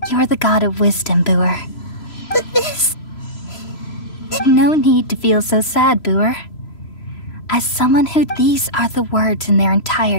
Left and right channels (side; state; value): right; late; 3.0 ms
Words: You're the god of wisdom, Boer. But this... No need to feel so sad, Boer. As someone who... These are the words in their